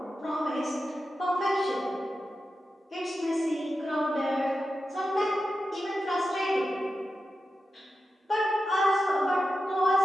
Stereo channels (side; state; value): both; normal; correlation 0.91